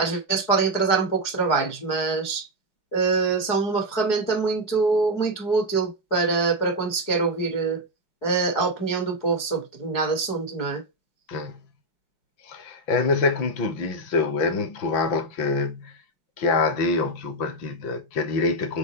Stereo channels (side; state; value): right; late; 4.8 ms